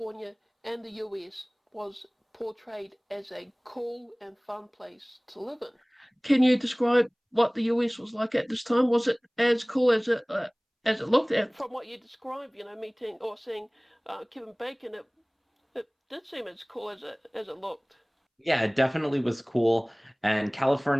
and the US was portrayed as a cool and fun place to live in. Can you describe what the US was like at this time? Was it as cool as it looked at? From what you described, meeting or seeing Kevin Bacon, it did seem as cool as it looked. Yeah, it definitely was cool. And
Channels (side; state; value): both; identical; correlation 1.00